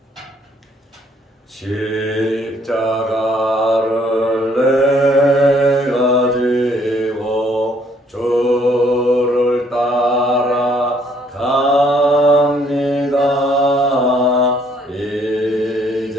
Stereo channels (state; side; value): normal; both; correlation 0.65